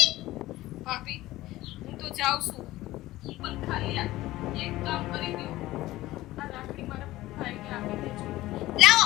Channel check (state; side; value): quieter; right; 16.9 dB